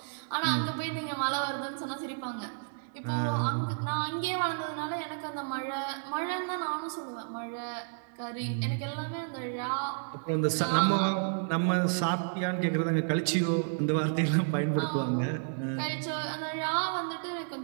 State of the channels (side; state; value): left; silent; digital silence